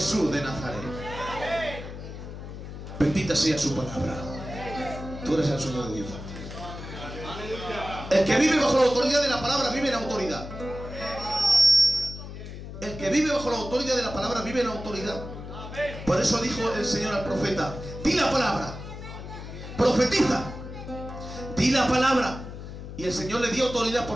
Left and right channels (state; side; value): noise; left; hum, 10 dB below the sound